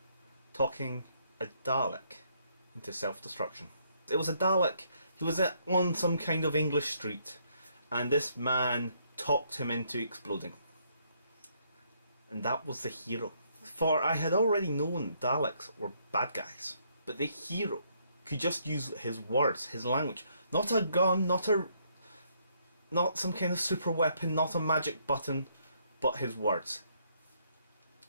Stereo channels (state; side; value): inverted; both; correlation -0.70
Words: talking a Dalek into self-destruction. It was a Dalek. He was on some kind of English street, and this man talked him into exploding. And that was the hero. For I had already known Daleks were bad guys, but the hero could just use his words, his language. Not a gun, not some kind of super weapon, not a magic button, but his words.